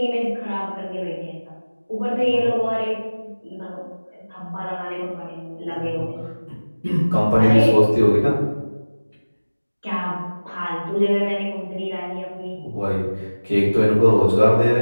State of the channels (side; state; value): both; inverted; correlation -1.00